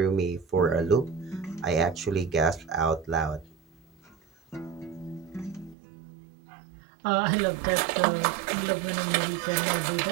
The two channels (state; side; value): drops out; left; at 5.8 s